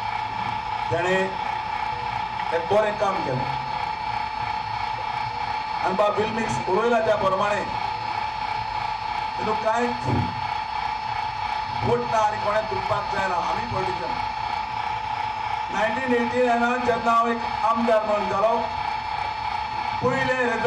तेणें एक बरें काम केलें आनी बाब बिल्मिक्स उलयला त्या प्रमाणे तितूंत कांयच फूट ना आनी कोणें दुखपाक जायना. आमी पॉलिटिशन 1989 जेन्ना हांव एक आमदार म्हणून जालो पयलें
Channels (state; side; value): identical; both; correlation 1.00